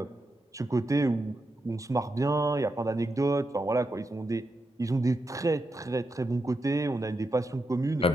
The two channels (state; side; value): normal; both; correlation 0.86